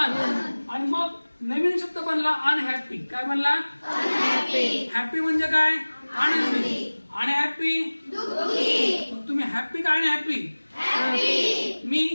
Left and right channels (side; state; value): both; inverted; correlation -1.00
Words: आणि मग नवीन शब्द बनला अनहॅपी. काय बनला? अनहॅपी. हॅपी म्हणजे काय? आनंदी. आणि हॅपी दुःखी. तुम्ही हॅपी का अनहॅपी? हॅपी. मी